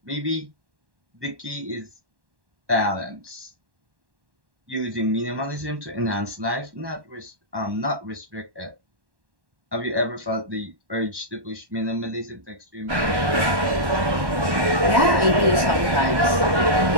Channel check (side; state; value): left; late; 1.1 ms